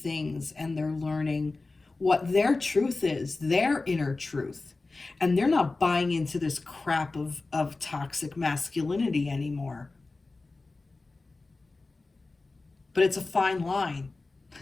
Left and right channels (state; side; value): quieter; right; 3.5 dB